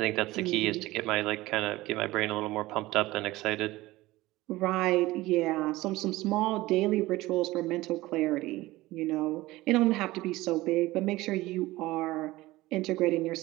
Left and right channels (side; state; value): left; quieter; 18.5 dB